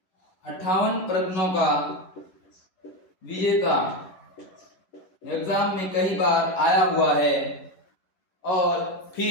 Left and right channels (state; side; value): late; right; 11 ms